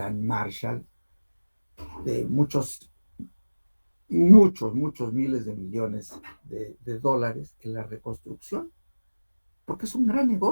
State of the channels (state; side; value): inverted; both; correlation -1.00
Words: Marshall de muchos miles de millones de dólares en la reconstrucción, porque es un gran